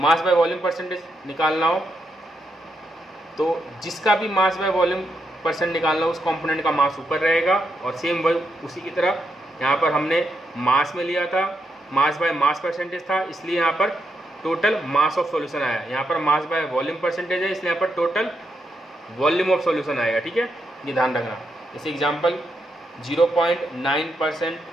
बाय वॉल्यूम परसेंटेज निकालना हो तो जिसका भी मास बाय वॉल्यूम परसेंट निकालना हो उस कंपोनेंट का मास ऊपर रहेगा, और सेम वही उसी की तरह यहाँ पर हमने मास में लिया था, मास बाय मास परसेंटेज था, इसलिए यहाँ पर टोटल मास ऑफ सॉल्यूशन आया। यहाँ पर मास बाय वॉल्यूम परसेंटेज है, इसलिए यहाँ पर टोटल वॉल्यूम ऑफ सॉल्यूशन आएगा। ठीक है, ये ध्यान रखना। जैसे एग्जांपल 0.9%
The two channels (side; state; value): both; normal; correlation 0.82